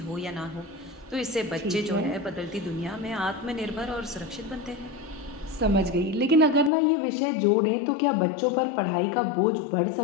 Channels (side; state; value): right; drops out; at 6.7 s